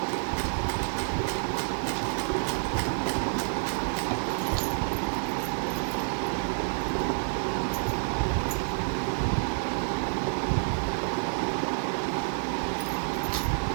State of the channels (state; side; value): silent; left; digital silence